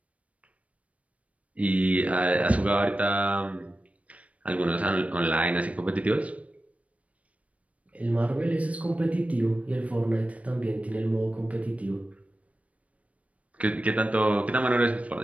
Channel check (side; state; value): left; late; 0.066 ms